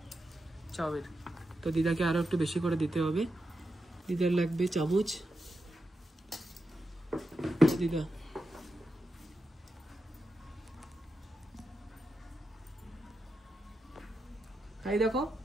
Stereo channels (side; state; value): both; normal; correlation 0.88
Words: চাউমিন। তো দিদাকে আরো একটু বেশি করে দিতে হবে, দিদার লাগবে চামচ। দিদা তাই দেখো